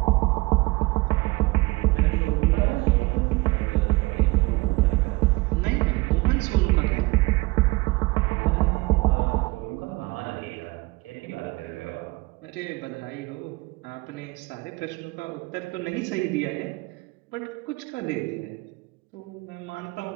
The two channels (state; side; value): quieter; left; 23.1 dB